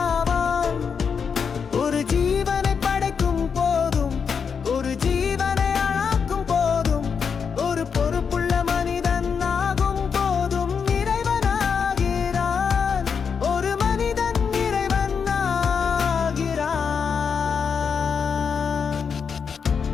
ஆவான். ஒரு ஜீவனை படைக்கும் போதும், ஒரு ஜீவனை அழாக்கும் போதும், ஒரு பொறுப்புள்ள மனிதன் ஆகும் போதும் இறைவனாகிறான். ஒரு மனிதன் இறைவன் ஆகிறான்.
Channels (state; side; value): quieter; right; 6.3 dB